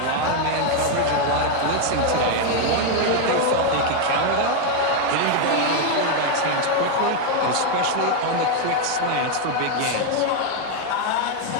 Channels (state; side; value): different; both; correlation 0.01